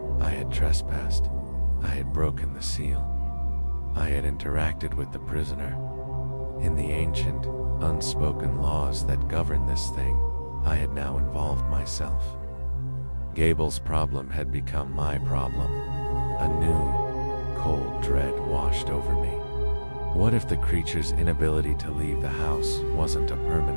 I had trespassed. I had broken the seal. I had interacted with the prisoner. In the ancient, unspoken laws that govern this thing, I had now involved myself. Gable's problem had become my problem. A new, cold dread washed over me. What if the creature's inability to leave the house wasn't a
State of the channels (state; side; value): inverted; both; correlation -1.00